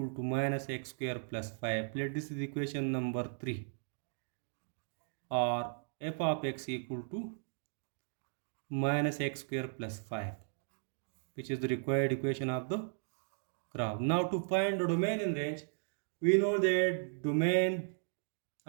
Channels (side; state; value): left; silent; digital silence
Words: to minus x square plus 5. Let this is equation number 3, or f of x equal to minus x square plus 5, which is the required equation of the graph. Now to find the domain in range, we know that domain